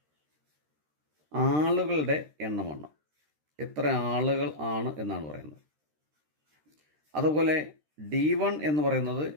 ആളുകളുടെ എണ്ണമാണ്, എത്ര ആളുകൾ ആണ് എന്നാണ് പറയുന്നത്. അതുപോലെ D1 എന്ന് പറയുന്നത്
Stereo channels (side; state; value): left; late; 13 ms